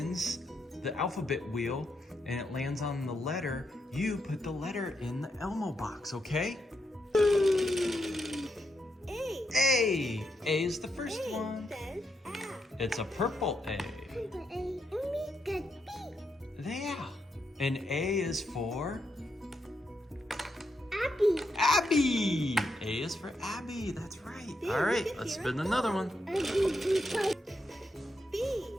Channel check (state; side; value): normal; both; correlation 0.81